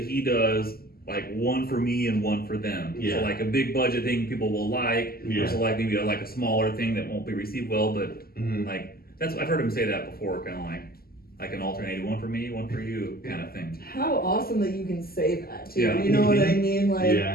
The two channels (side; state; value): right; late; 0.44 ms